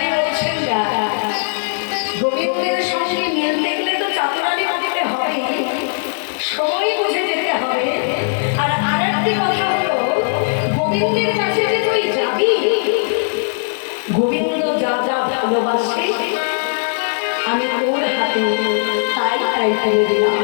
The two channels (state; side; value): silent; right; digital silence